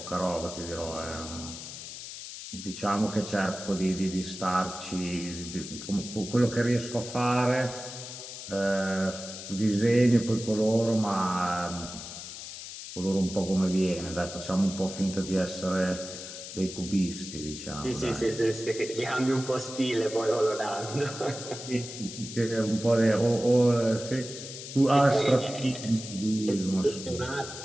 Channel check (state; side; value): noise; left; hiss, 10 dB below the sound